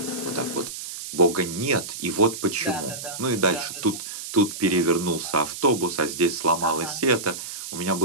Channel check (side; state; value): right; noise; hiss, 9 dB below the sound